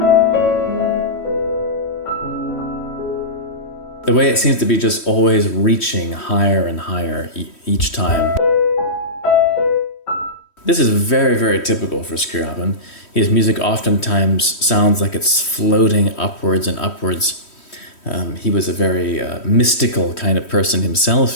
The way it seems to be just always reaching higher and higher each time. This is very, very typical for Scriabin. His music oftentimes sounds like it's floating upwards and upwards. He was a very mystical kind of person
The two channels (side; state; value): right; late; 3.1 ms